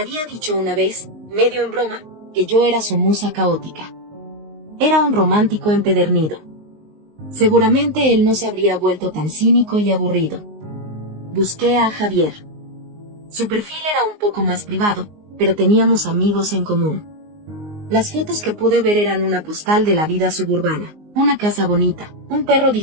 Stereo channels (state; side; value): late; left; 19 ms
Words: dicho una vez, medio en broma, que yo era su musa caótica. Era un romántico empedernido. Seguramente él no se habría vuelto tan cínico y aburrido. Busqué a Javier. Su perfil era un poco más privado, pero teníamos amigos en común. Las fotos que pude ver eran una postal de la vida suburbana, una casa bonita, un perro